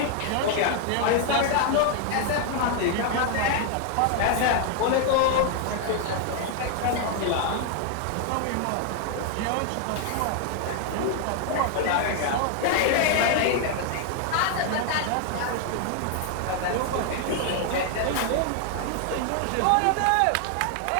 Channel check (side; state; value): both; different; correlation 0.00